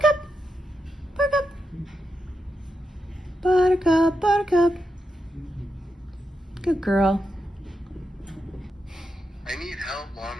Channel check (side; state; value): both; normal; correlation 0.86